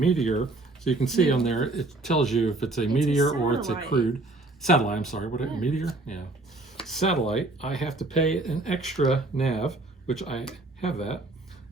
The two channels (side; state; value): left; quieter; 3.0 dB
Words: so you can see on there, it tells you if it's a meteor or it's a satellite. crude. Satellite, I'm sorry. What, Yeah. meteor? Yeah. Satellite, I have to pay an extra nav, which I have that.